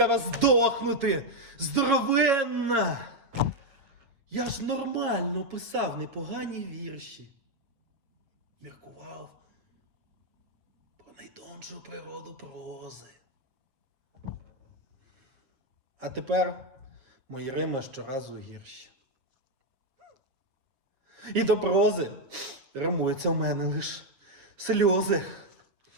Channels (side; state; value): left; late; 7.4 ms